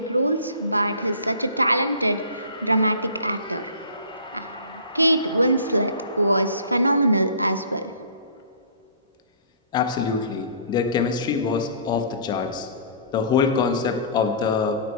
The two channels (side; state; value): both; inverted; correlation -0.46